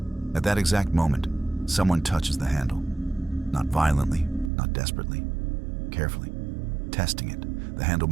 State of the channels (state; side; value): drops out; left; at 4.5 s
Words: At that exact moment, someone touches the handle. Not violently, not desperately. Carefully, testing it. The handle